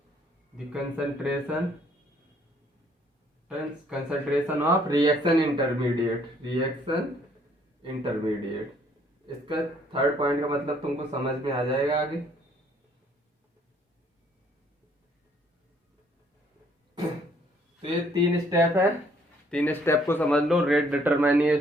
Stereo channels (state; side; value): normal; both; correlation 0.64